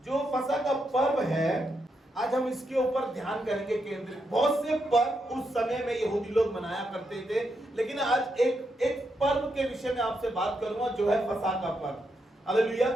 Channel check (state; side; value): normal; both; correlation 0.82